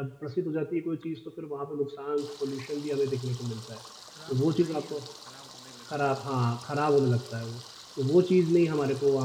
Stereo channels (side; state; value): both; identical; correlation 1.00